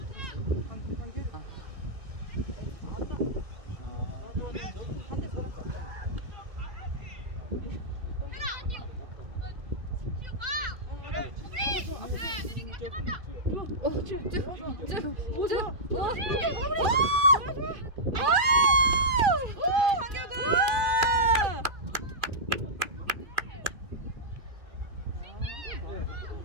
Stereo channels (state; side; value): late; left; 2.4 ms